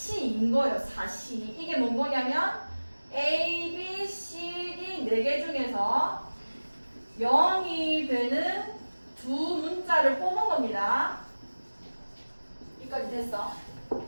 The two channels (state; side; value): inverted; both; correlation -1.00